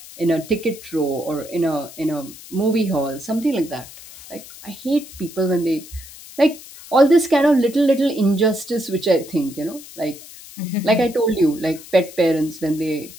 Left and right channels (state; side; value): noise; left; hiss, 17 dB below the sound